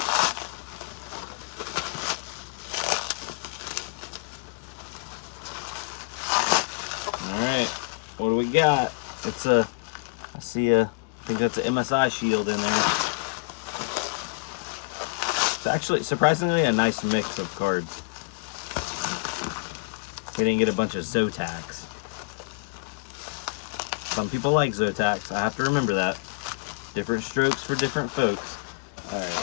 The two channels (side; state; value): right; quieter; 36.0 dB